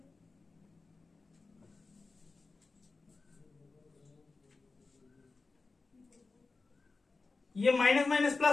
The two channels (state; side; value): quieter; right; 3.9 dB